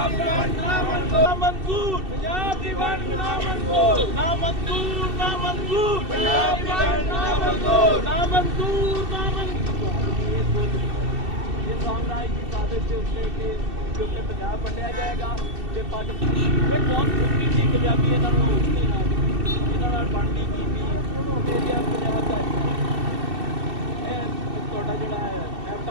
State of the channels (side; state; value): left; late; 2.7 ms